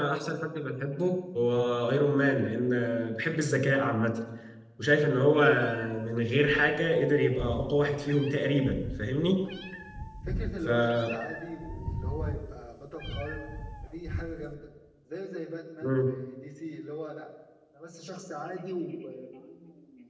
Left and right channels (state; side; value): identical; both; correlation 1.00